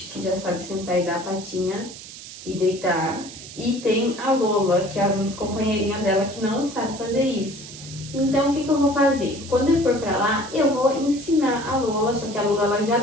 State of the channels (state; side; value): noise; right; hiss, 14 dB below the sound